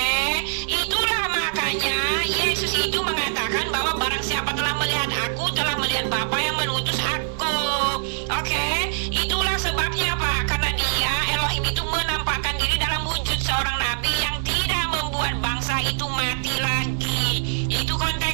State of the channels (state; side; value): silent; left; 57 dB below the other